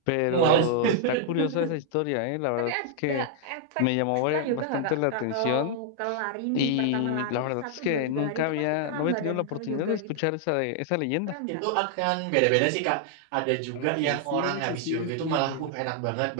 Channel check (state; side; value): different; both; correlation 0.00